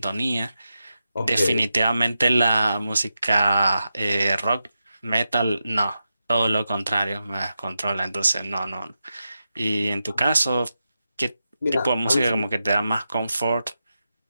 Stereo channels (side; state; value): both; inverted; correlation -0.89